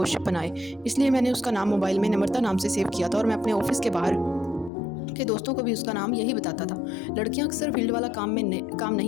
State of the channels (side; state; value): right; drops out; at 4.7 s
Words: बनाए। इसलिए मैंने उसका नाम मोबाइल में नम्रता नाम से सेव किया था, और मैं अपने ऑफिस के बाहर के दोस्तों को भी उसका नाम यही बताता था। लड़कियां अक्सर फील्ड वाला काम